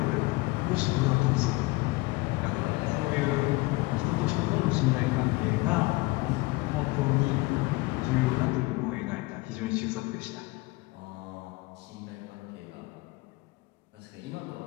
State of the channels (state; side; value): quieter; right; 22.9 dB